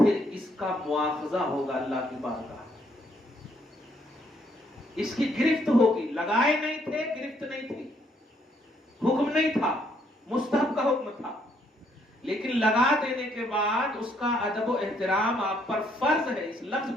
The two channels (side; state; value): both; normal; correlation 0.70